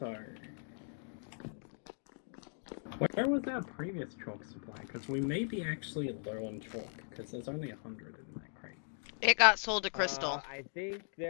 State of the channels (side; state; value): right; silent; 52 dB below the other